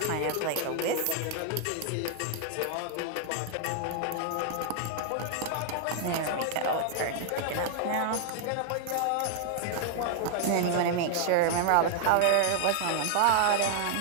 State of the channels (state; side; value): different; both; correlation 0.00